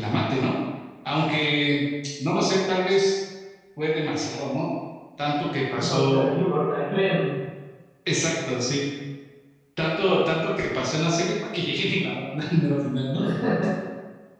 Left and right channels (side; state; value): both; identical; correlation 1.00